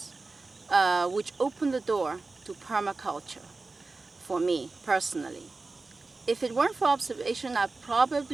which open the door to permaculture for me personally. If it weren't for observation, I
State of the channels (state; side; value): quieter; left; 3.6 dB